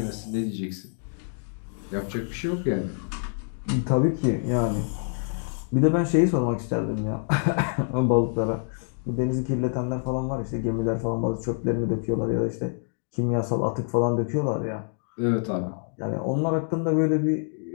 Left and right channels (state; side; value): silent; right; digital silence